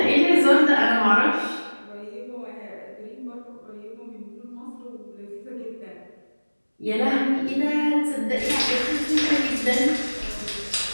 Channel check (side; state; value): both; inverted; correlation -1.00